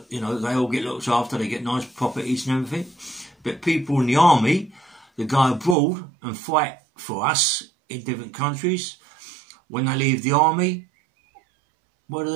you know, they all get looked after. They get nice properties and everything. But people in the army that go abroad and fight for us in different countries, when they leave the army, what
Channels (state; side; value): drops out; left; at 5.8 s